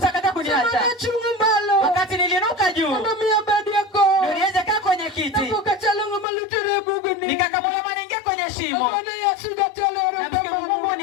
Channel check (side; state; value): right; drops out; at 6.2 s